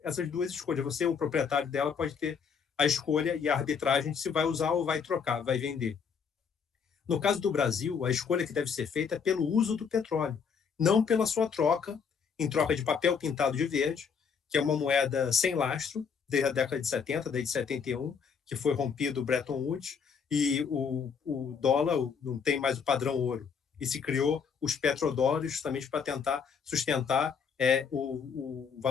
essas duas escolhas. Você, o proprietário dela, pode ter a escolha e a arbitragem de se vai usar ou vai trocar, vai vender. No caso do Brasil, a escolha que deve ser feita é pelo uso do petróleo, não pela sua troca, em troca de papel pintado de verde, que é uma moeda sem lastro, desde a década de 70, desde 71, que foi rompido o Bretton Woods, e o dólar não tem mais o padrão ouro. E se criou os petrodólares justamente para tentar sustentar o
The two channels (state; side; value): quieter; right; 6.4 dB